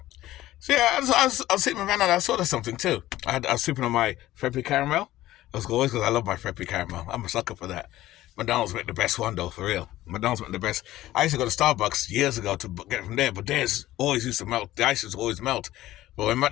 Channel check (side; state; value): right; quieter; 15.4 dB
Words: So yeah, I was sitting in my van and I saw there's something too. I was sipping on my Freppy caramel. As always, because I love my Freppy caramel. I'm a sucker for that. McDonald's make the best one though, for real. McDonald's make the best. I used to go to Starbucks years ago to get it from there, but theirs always used to melt. The ice used to always melt. But when